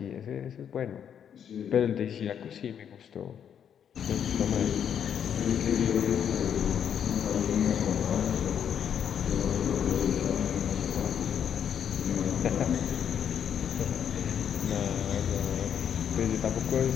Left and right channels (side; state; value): right; quieter; 8.5 dB